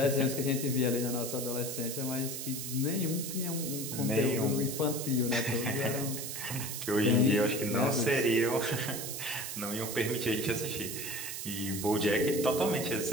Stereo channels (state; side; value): noise; right; hiss, 6 dB below the sound